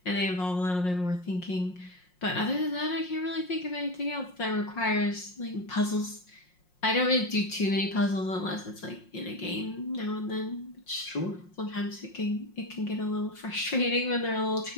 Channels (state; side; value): late; right; 5.6 ms